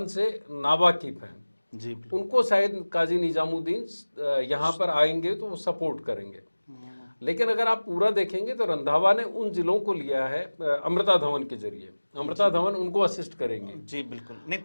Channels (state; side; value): inverted; both; correlation -1.00